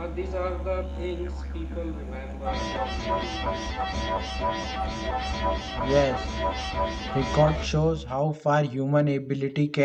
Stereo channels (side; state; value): both; identical; correlation 1.00